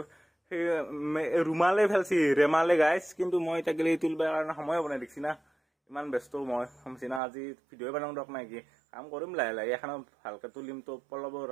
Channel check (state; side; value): drops out; left; at 7.2 s